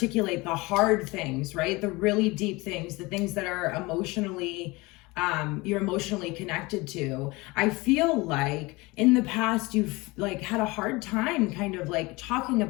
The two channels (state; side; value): quieter; right; 23.4 dB